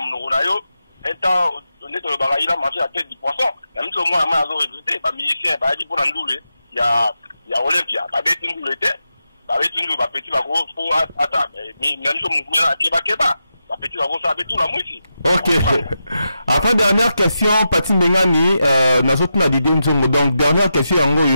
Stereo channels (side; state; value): both; inverted; correlation -0.88